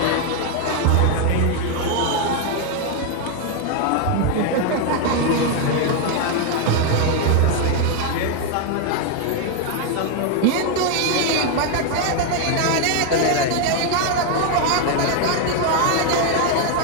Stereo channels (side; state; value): both; different; correlation 0.01